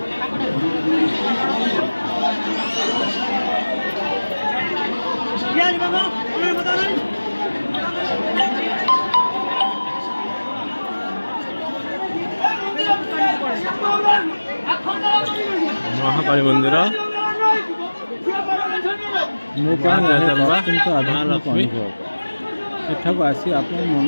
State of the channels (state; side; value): inverted; both; correlation -1.00